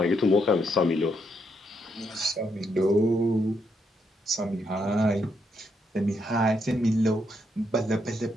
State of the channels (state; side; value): normal; both; correlation 0.77